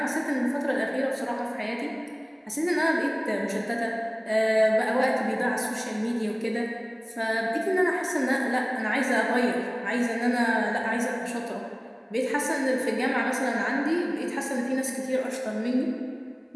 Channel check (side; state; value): both; identical; correlation 1.00